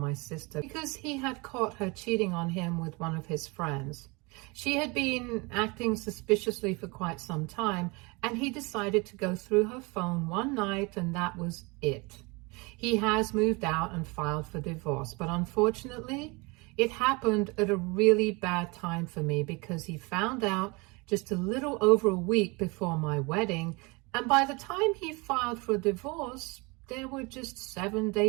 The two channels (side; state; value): left; quieter; 27.1 dB